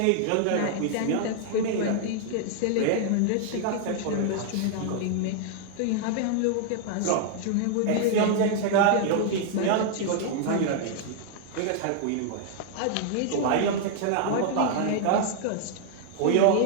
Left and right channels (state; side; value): different; both; correlation 0.00